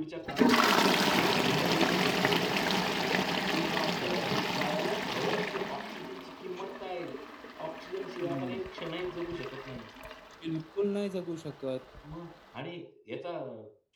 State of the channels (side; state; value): both; identical; correlation 1.00